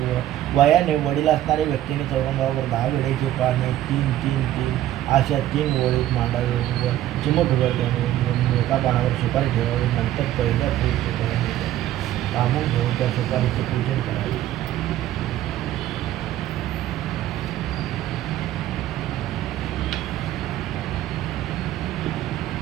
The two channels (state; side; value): quieter; left; 13.2 dB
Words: वयाने वडील असणाऱ्या व्यक्तीने चौरंगावर 10 वेळेचे पाने 3-3-3 अशा 3 ओळीत मांडावे व चिमट उघडल्याने एका पानावर सुपारी ठेवावी. नंतर पहिल्या पूजकाने कामून घेऊन त्या सुपारीचे पूजन करावे.